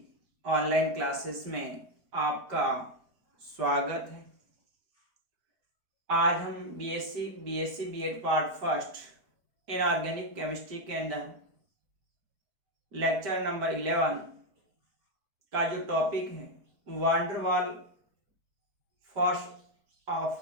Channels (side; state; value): left; late; 5.1 ms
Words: online classes में आपका स्वागत है। आज हम BSc BEd part first inorganic chemistry के अंदर लेक्चर नंबर 11 का जो टॉपिक है वांडरवाल फोर्स